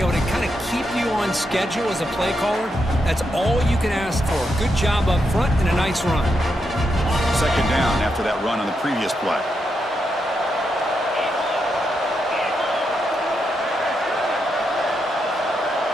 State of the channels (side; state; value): both; normal; correlation 0.83